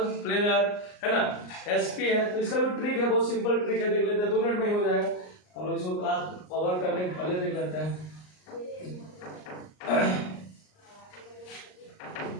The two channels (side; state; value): right; late; 38 ms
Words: प्लेनर, है ना, sp है तो इसका भी ट्रिक है, बहुत सिंपल ट्रिक है, देख लेते हैं, 2 मिनट में ही हो जाएगा। हम लोग इसको क्लास कवर करने के पहले देख लेते हैं।